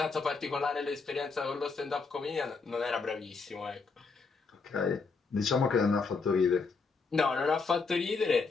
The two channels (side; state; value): right; quieter; 4.6 dB